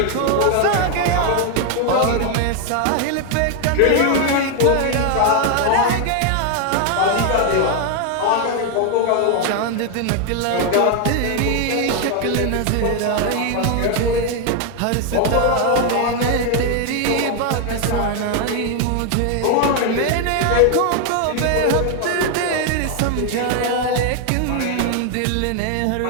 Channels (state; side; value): different; both; correlation 0.01